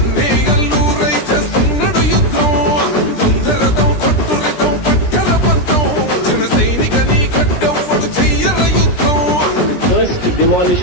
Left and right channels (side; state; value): right; late; 17 ms